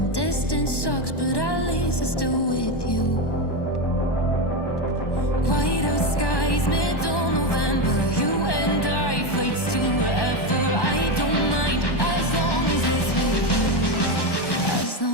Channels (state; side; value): late; right; 1.1 ms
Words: Distance sucks, but at least I'm still with you.